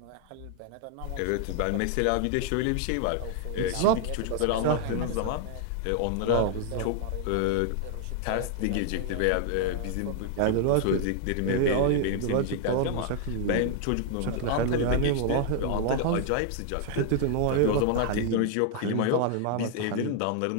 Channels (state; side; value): different; both; correlation 0.00